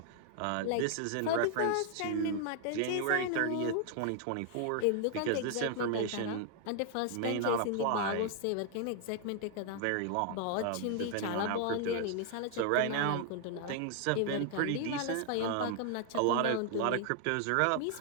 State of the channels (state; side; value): different; both; correlation 0.00